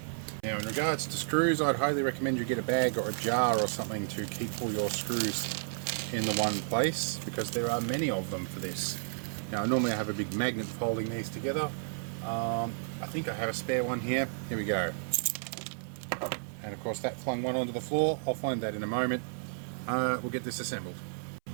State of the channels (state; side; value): silent; left; 56 dB below the other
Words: Now in regards to screws, I'd highly recommend you get a bag or a jar or something to keep all your screws in the one place because there are many of them for this. Now normally I have a big magnet holding these together. I think I have a spare one here. Here we go. And of course that flung one onto the floor. I'll find that in a moment. We'll get this assembled.